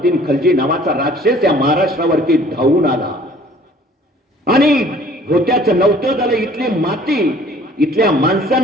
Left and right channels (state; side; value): normal; both; correlation 0.53